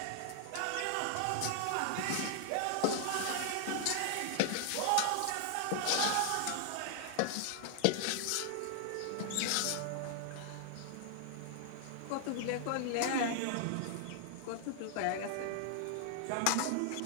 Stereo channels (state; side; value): different; both; correlation 0.00